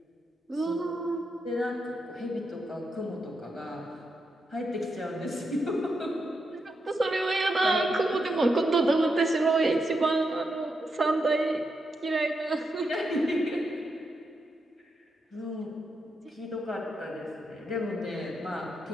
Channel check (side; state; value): both; normal; correlation 0.84